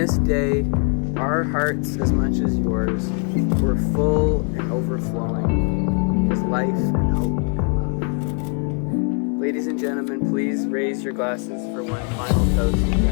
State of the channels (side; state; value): right; quieter; 35.8 dB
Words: day, our hearts as much as yours were full and overflowing with life and hope and love. Ladies and gentlemen, please raise your glasses for one final toast to